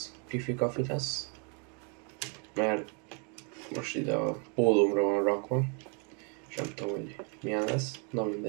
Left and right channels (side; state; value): left; quieter; 36.9 dB